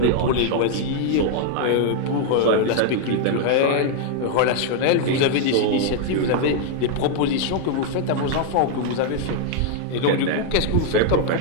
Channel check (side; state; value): both; different; correlation 0.00